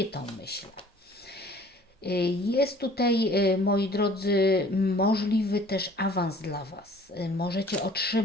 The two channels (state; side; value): normal; both; correlation 0.52